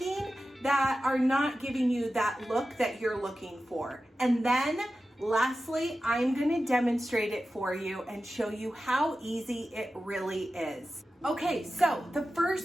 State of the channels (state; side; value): normal; both; correlation 0.93